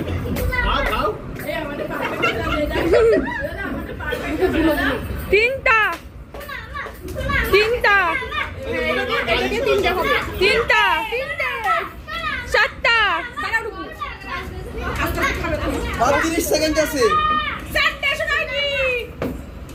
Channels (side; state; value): both; identical; correlation 1.00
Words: তিনটা, তিনটা, তিনটা, চারটা, 30 সেকেন্ড আছে। চারটা শোনা কি,